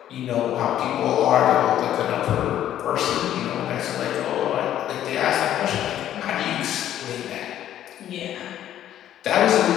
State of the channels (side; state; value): right; quieter; 11.5 dB